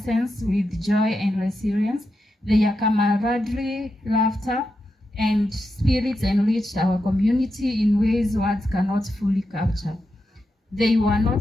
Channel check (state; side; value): normal; both; correlation 0.87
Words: with joy and resilience. Their camaraderie, laughter, and spirits enriched our community in ways words cannot fully capture. They were not